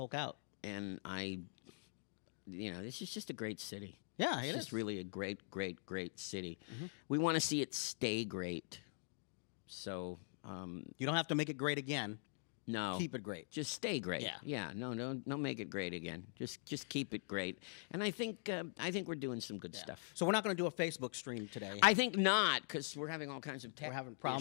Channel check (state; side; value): silent; right; digital silence